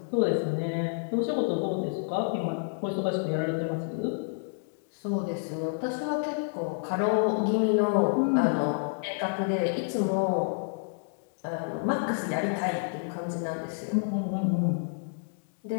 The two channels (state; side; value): silent; right; digital silence